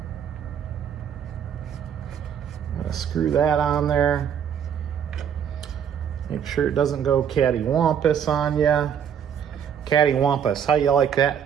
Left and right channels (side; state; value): left; quieter; 8.3 dB